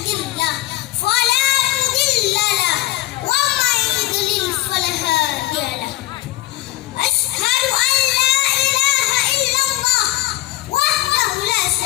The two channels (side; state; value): right; quieter; 17.4 dB